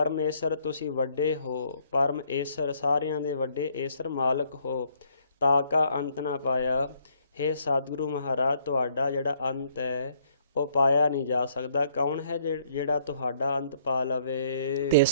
ਤੁਸੀਂ ਵੱਡੇ ਹੋ, ਪਰਮ ਈਸ਼ਰ ਸਾਰਿਆਂ ਦੇ ਵੱਡੇ ਈਸ਼ਰ ਮਾਲਕ ਹੋ। ਤਾ ਕਾ ਅੰਤ ਨਾ ਪਾਇਆ। ਹੇ ਸਤਿਗੁਰੂ ਮਹਾਰਾਜ, ਤੁਹਾਡਾ ਜਿਹੜਾ ਅੰਤ ਹੈ ਉਹ ਪਾਇਆ ਨਹੀਂ ਜਾ ਸਕਦਾ। ਕੌਣ ਹੈ ਜਿਹੜਾ ਤੁਹਾਡਾ ਅੰਤ ਪਾ ਲਵੇ?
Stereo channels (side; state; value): both; inverted; correlation -0.67